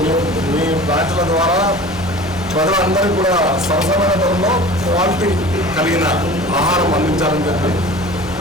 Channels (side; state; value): both; normal; correlation 0.40